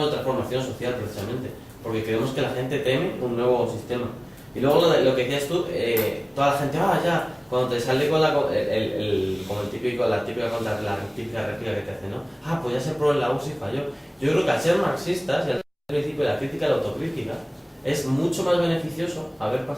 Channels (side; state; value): both; identical; correlation 1.00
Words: de transformación social precisamente, porque creemos que la gente teme un nuevo sistema. Y luego lo que decías tú, toda la gente, ya, cuando te sale con la típica réplica que te hace, ¿no? Pues ya se probó en la URSS y falló. Yo creo que al ser marxistas y al principio de la crítica y la autocrítica, es mucho más beneficioso haber